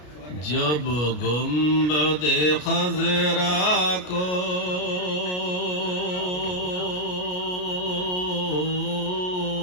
जब गुंबद खजरा को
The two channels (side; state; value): right; late; 33 ms